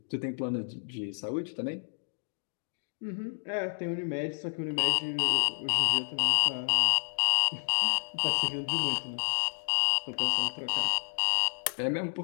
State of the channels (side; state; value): right; silent; digital silence